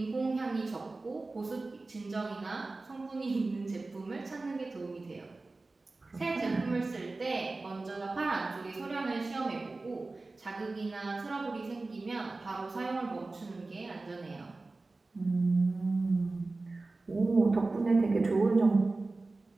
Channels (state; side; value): quieter; left; 3.4 dB